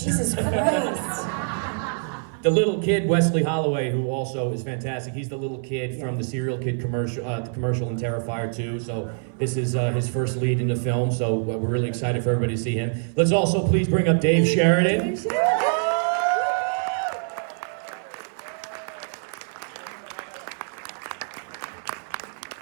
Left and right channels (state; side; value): silent; left; 60 dB below the other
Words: Jesus Christ. The little kid, Wesley Holloway, who also is fantastic. He's the little kid from the Serial Kid commercial, the commercial in Terrifier 2. So this is his first lead in the film. So we're really excited for everybody to see him. Let's also please bring up Dave Sheridan. Dave Sheridan.